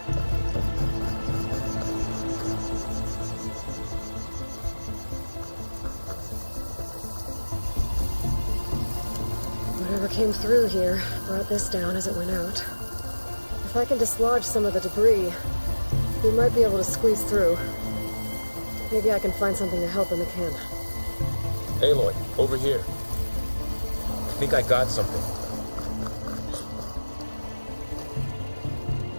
Whatever came through here brought this down as it went out. If I can dislodge some of the debris, we might be able to squeeze through. Maybe I can find something to help in the camp. Aloy, over here. I think I got something.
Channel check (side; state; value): both; inverted; correlation -1.00